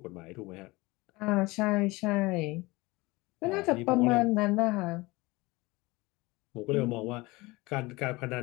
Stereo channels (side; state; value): right; quieter; 22.4 dB